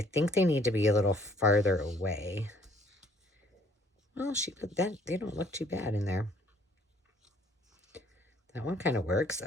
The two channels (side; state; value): both; normal; correlation 0.60